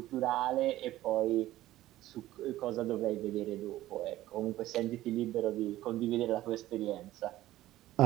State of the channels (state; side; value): quieter; left; 15.2 dB